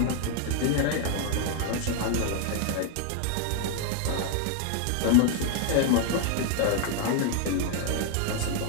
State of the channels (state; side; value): different; both; correlation 0.00